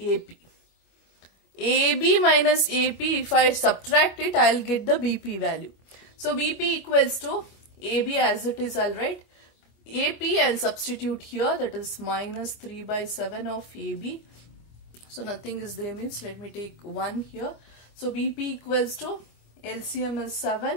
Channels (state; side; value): late; right; 25 ms